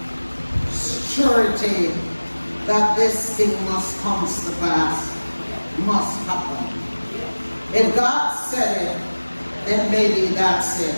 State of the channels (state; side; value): inverted; both; correlation -1.00